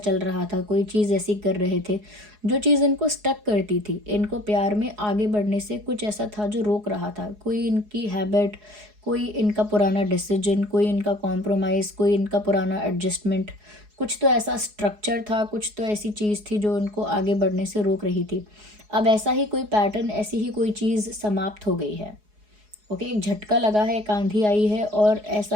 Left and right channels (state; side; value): late; left; 4.8 ms